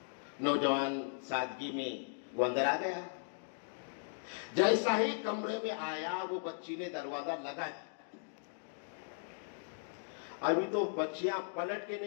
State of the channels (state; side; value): silent; right; digital silence